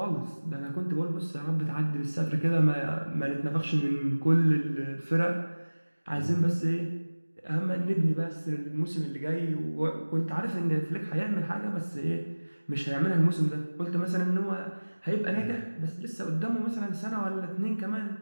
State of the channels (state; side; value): inverted; both; correlation -1.00